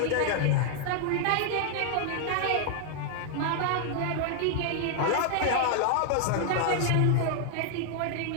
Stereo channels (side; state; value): both; different; correlation 0.00